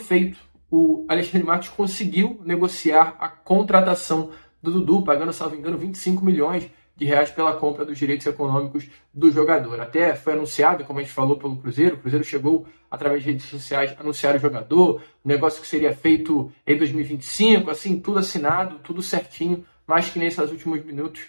O Alexandre Matos conseguiu negociar a contratação do Dudu, pagando, salvo engano, 25 milhões de reais pela compra dos direitos econômicos do jogador. Até foi anunciado, como a gente falou, pelo Cruzeiro. O Cruzeiro chegou, através de redes sociais, a anunciar o jogador, um negócio que seria feito em 2025, assim, tudo assinado, tudo certinho, mas que nesses últimos minutos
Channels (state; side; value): inverted; both; correlation -1.00